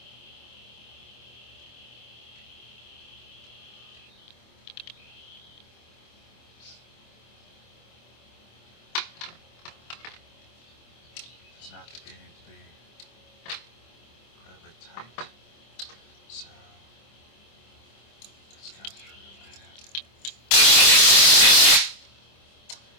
Does not need to be incredibly tight. So let's go through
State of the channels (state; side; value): late; right; 25 ms